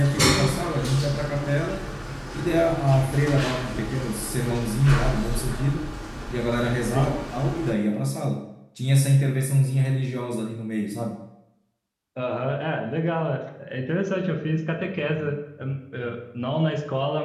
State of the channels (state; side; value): identical; both; correlation 1.00